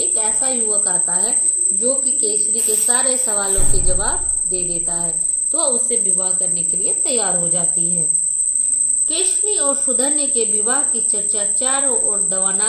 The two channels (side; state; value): both; identical; correlation 1.00